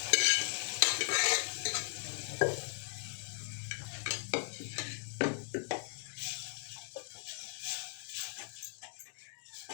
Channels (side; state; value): right; silent; digital silence